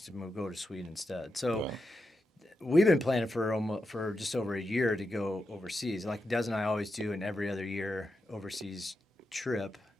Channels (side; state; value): both; normal; correlation 0.87